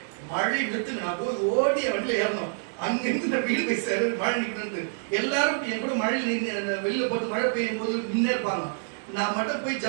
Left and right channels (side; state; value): left; silent; digital silence